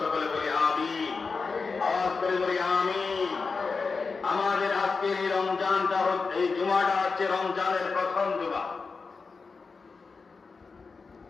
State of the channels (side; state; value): right; quieter; 4.6 dB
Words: সকলে বলি আমিন। আওয়াজ করে বলি আমিন। আমাদের আজকের এই রমজানটা, এই জুমাটা হচ্ছে রমজানের প্রথম জুমা।